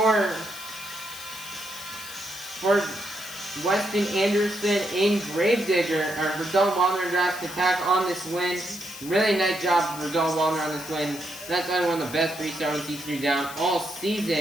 Weston Anderson in Gravedigger, or for Dalton Wilder in Jurassic Attack on this win. Really nice job for Dalton Wilder on this win. That's probably one of the best freestyle T3 down all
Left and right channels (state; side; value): noise; left; hiss, 13 dB below the sound